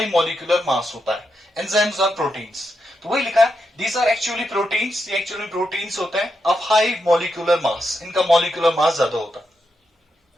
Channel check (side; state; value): both; normal; correlation 0.84